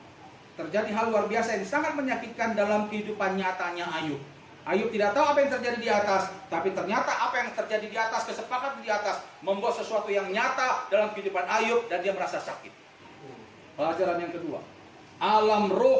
Terjadi hal luar biasa yang sangat menyakitkan dalam kehidupan nyatanya Ayub. Ayub tidak tahu apa yang terjadi di atas, tapi ternyata apa yang terjadi di atas, kesepakatan di atas, membuat sesuatu yang nyata dalam kehidupan Ayub dan dia merasa sakit. Pelajaran yang kedua, alam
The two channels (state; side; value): identical; both; correlation 1.00